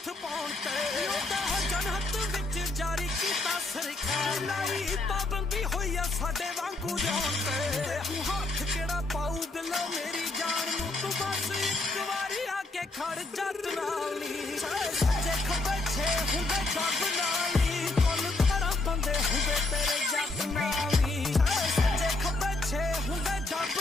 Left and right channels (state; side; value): quieter; right; 3.1 dB